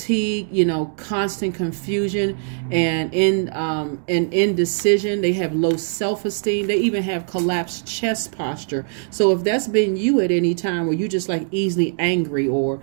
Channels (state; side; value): silent; left; digital silence